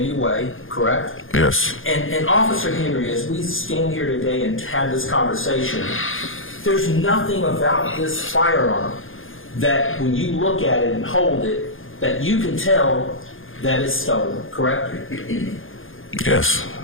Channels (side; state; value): right; late; 0.59 ms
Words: way, correct? Yes. And Officer Henry, as we stand here today and have this conversation, there's nothing about this firearm that when you look at it and hold it, that you can tell that it's stolen, correct? Yes.